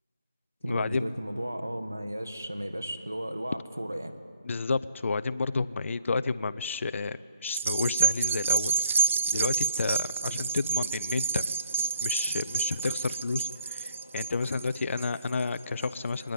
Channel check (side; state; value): both; inverted; correlation -0.64